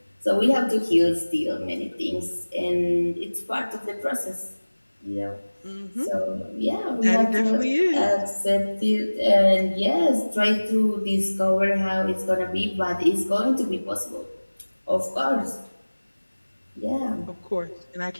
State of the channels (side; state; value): both; inverted; correlation -1.00